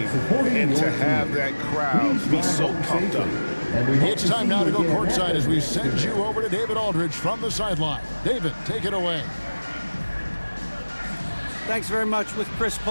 and to have that crowd be so pumped up. It's time now to go courtside as we send you over to David Aldridge from the sideline. David, take it away. Thanks very much with Chris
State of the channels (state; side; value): inverted; both; correlation -1.00